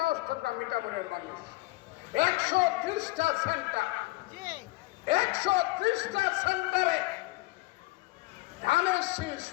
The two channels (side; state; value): right; quieter; 21.9 dB